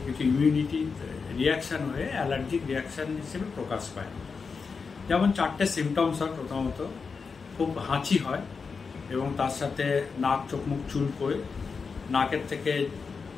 কিছু ইমিউনিটি রিয়াকশান হয়ে অ্যালার্জিক রিয়াকশান হিসেবে প্রকাশ পায়। যেমন 4টে সিমটমস হয়। প্রথমত খুব হাঁচি হয় এবং তার সাথে নাক চোখ মুখ চুলকোয়, নাকের থেকে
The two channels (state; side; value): quieter; right; 5.1 dB